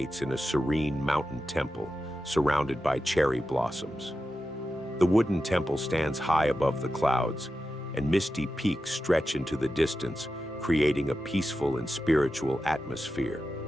in a serene mountain temple surrounded by cherry blossoms. The wooden temple stands high above the clouds, and misty peaks stretch into the distance, creating a peaceful and spiritual atmosphere.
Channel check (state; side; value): normal; both; correlation 0.91